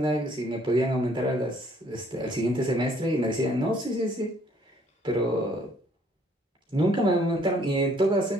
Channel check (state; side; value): normal; both; correlation 0.63